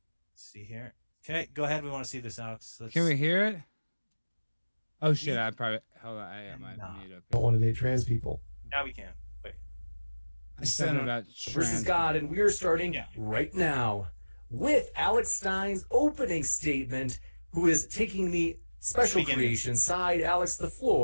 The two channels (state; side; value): inverted; both; correlation -1.00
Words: see here. Okay, go ahead. We want to see this, Alex. Can we hear it? Oh shit! I probably hold on. I might mute up. Don't want to date trans people. Now we can. Wait. I said about versus God, and we are starting right now with Alex Stein's opening statement, who is taking the special creation side. Alex, the